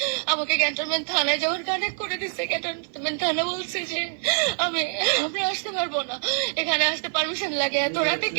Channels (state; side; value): silent; left; 62 dB below the other